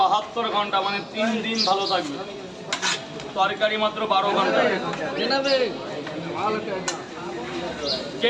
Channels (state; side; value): identical; both; correlation 1.00